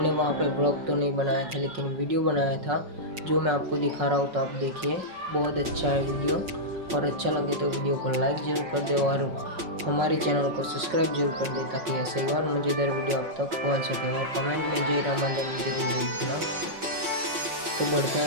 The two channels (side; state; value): left; late; 5.5 ms